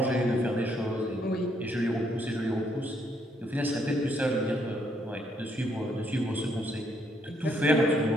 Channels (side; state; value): both; normal; correlation 0.72